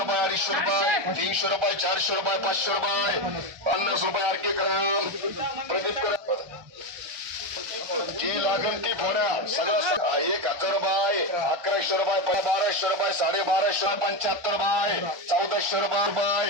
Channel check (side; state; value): left; late; 1.2 ms